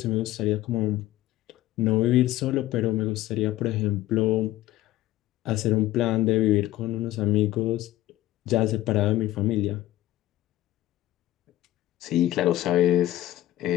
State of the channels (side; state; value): right; quieter; 15.0 dB